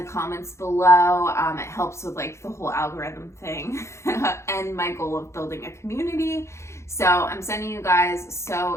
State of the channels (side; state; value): right; late; 0.13 ms